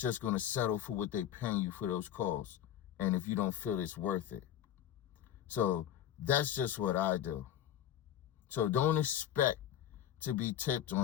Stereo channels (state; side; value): quieter; right; 11.0 dB